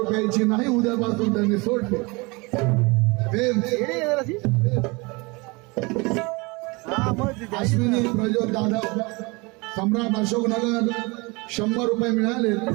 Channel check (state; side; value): quieter; left; 26.7 dB